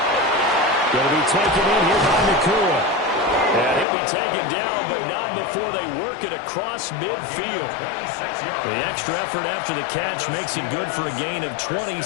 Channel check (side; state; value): right; drops out; at 3.9 s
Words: Going to be taken in here by Nakua. And he'll be taken down, but not before they work it across midfield. The extra effort after the catch makes it good for a gain of